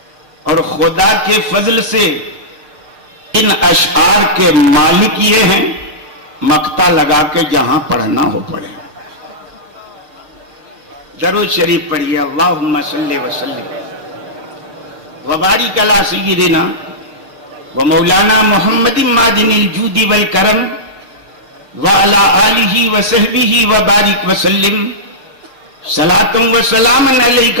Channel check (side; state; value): left; late; 6.6 ms